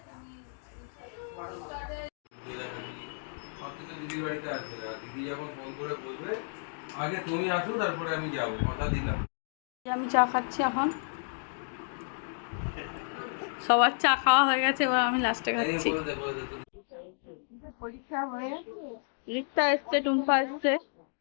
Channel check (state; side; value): silent; right; digital silence